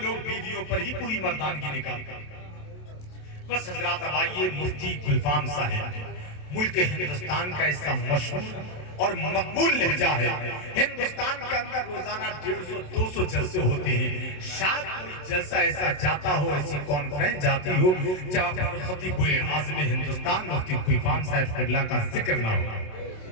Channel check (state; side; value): late; right; 27 ms